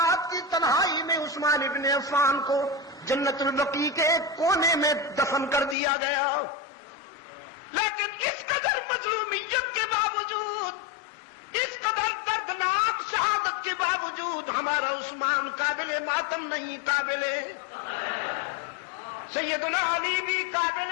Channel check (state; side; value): drops out; right; at 5.8 s